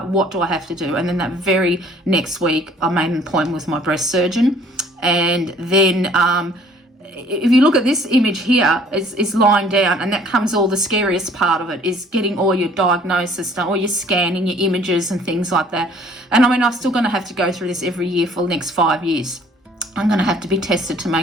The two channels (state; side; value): normal; both; correlation 0.56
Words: what do I have to do? And then that very next week, I made an appointment with my breast surgeon. And then if you look at this image here, is lying down, and that comes all the scariest part of it, is getting all your diagnosis done, all your scanning, your images and things like that. And I mean, I'm still going to have to go through this every year for the next 5 years. I'm going to have to be tested to